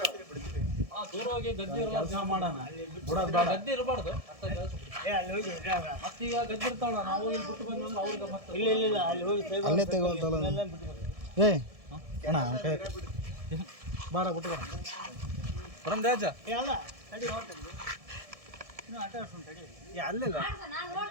ದೂರವಾಗಿ ಗದ್ದೆ ಕೆಲಸ ಮಾಡೋಣ. ಗದ್ದೆ ಇರಬಾರ್ದು. ಮತ್ತೀಗ ಗದ್ದೆ ಇರ್ತಾವಲ್ಲ, ನಾವು ಇಲ್ಲಿ ಬಿಟ್ಟು ಬಂದ್ರೆ ಅವ್ರಿಗೆ ಮತ್ತೆ ಇಲ್ಲ ಅಲ್ಲಿ ಹೋಗಿ ಅಲ್ಲೇ ತಗೋಲ್ತಲ್ಲ ಏ ಅಣ್ಣ ಬಾರ ಬಿಟ್ಟು ಬರ ಬರಂದೆ ಅಜ್ಜ. ಅಲ್ಲ ತಡಿ ಹೊರಟಲ್ಲಿ ಇನ್ನೂ ಆಟ ಆಡ್ಸೋಣ ತಡಿ ಅಲ್ಲಿಲ್ಲ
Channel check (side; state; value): left; late; 1.7 ms